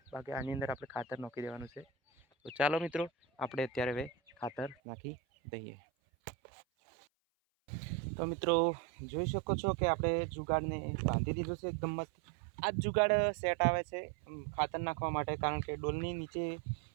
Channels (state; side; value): drops out; left; at 4.8 s